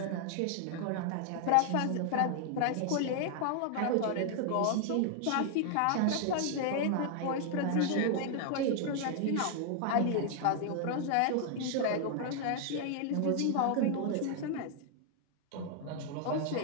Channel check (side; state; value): both; different; correlation 0.00